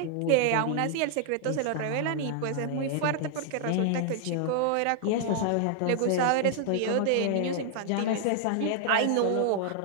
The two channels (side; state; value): both; different; correlation 0.00